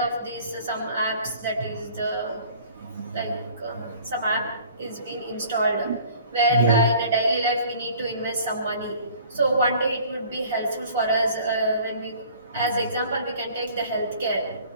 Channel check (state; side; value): inverted; both; correlation -0.50